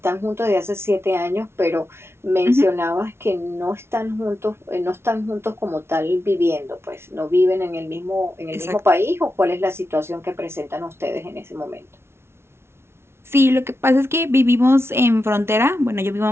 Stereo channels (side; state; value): left; late; 0.12 ms